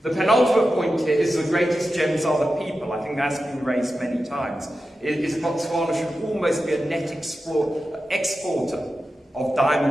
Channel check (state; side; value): normal; both; correlation 0.92